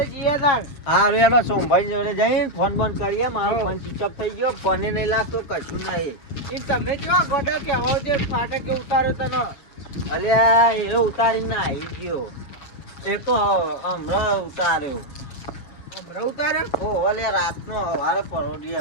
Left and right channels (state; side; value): late; right; 7.2 ms